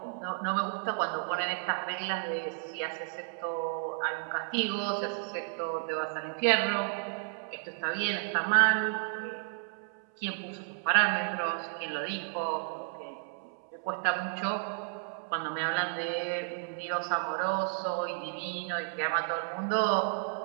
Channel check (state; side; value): silent; left; 56 dB below the other